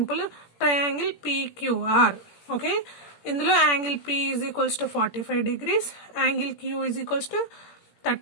Triangle PQR. ఓకే, ఇందులో angle P is equals to 45 degrees, angle Q is equals to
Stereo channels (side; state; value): right; late; 17 ms